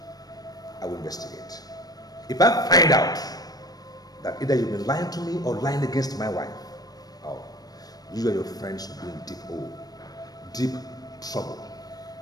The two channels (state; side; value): late; right; 0.19 ms